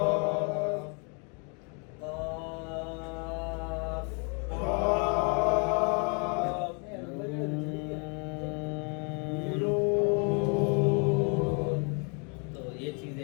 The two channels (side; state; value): right; quieter; 36.8 dB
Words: قاف. قاف. نون. تو یہ